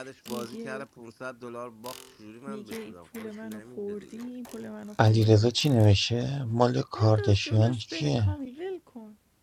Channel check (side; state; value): both; identical; correlation 1.00